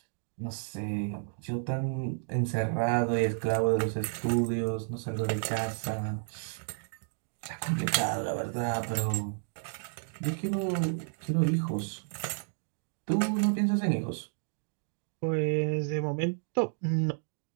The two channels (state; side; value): silent; left; digital silence